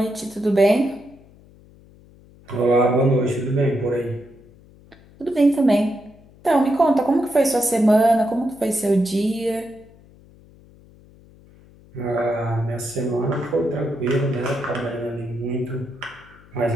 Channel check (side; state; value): left; noise; hum, 25 dB below the sound